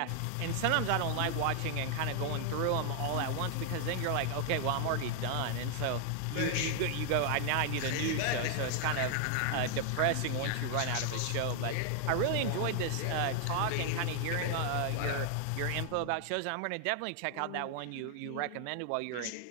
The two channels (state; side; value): different; both; correlation 0.00